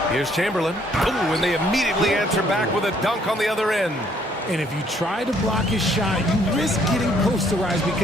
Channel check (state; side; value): normal; both; correlation 0.65